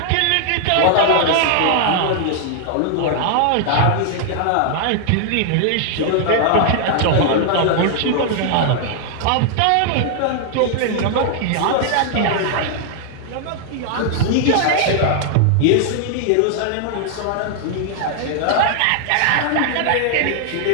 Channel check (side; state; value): both; different; correlation 0.00